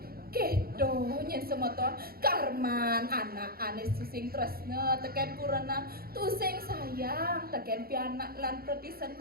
kedo nyen semeton karman anak anes susing tresna teken kurana tusing sayang teken pianak lan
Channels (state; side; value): late; left; 0.44 ms